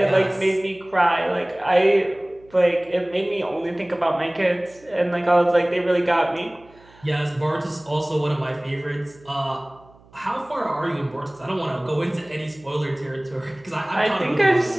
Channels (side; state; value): right; noise; hum, 27 dB below the sound